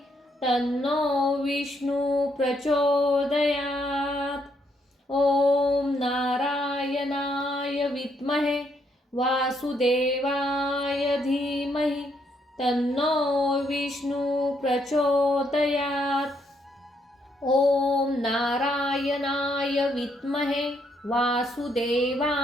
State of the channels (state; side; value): normal; both; correlation 0.74